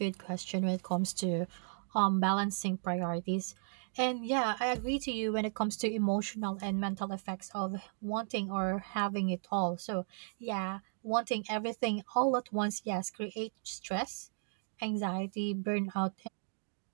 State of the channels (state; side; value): silent; left; digital silence